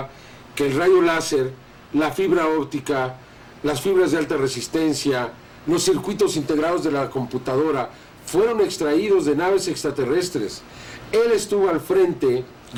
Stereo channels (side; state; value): both; identical; correlation 1.00